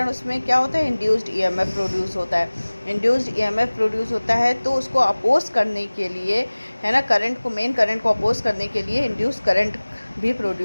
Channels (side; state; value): both; inverted; correlation -1.00